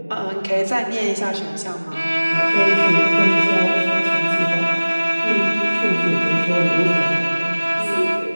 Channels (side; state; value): both; inverted; correlation -1.00